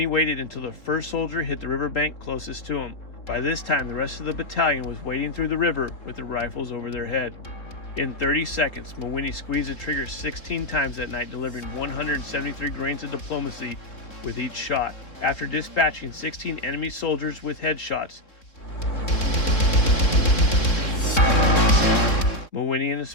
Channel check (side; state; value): right; late; 3.7 ms